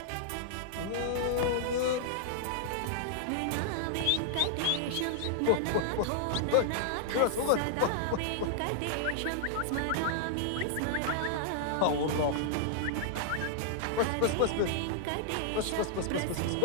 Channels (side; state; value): both; different; correlation -0.01